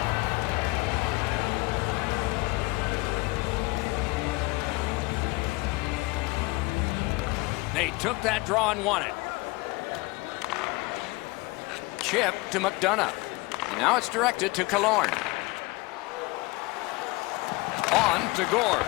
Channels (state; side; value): quieter; right; 23.4 dB